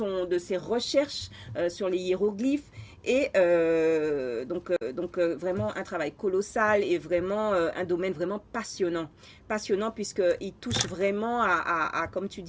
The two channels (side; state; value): both; identical; correlation 1.00